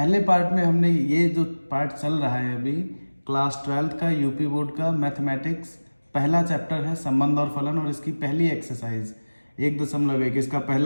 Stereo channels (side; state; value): both; inverted; correlation -1.00